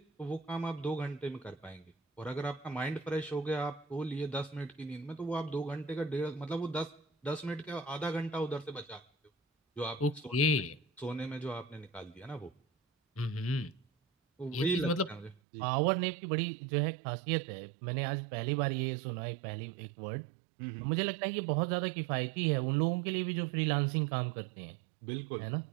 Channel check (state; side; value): drops out; left; at 15.4 s